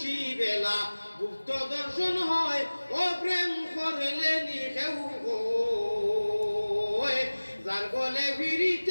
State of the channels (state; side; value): inverted; both; correlation -1.00